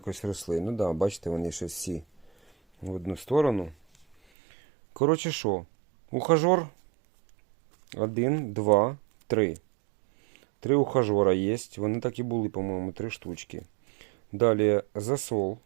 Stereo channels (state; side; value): drops out; left; at 4.2 s